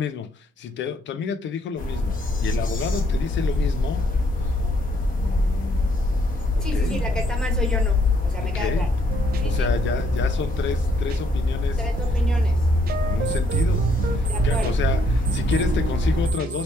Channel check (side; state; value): both; normal; correlation 0.70